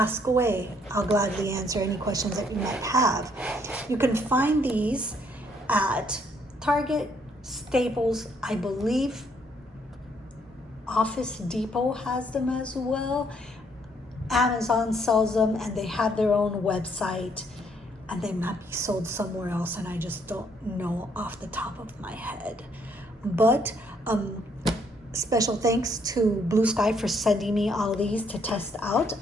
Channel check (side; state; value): both; normal; correlation 0.68